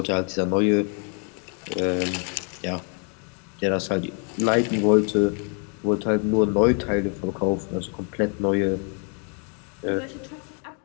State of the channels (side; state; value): right; quieter; 39.3 dB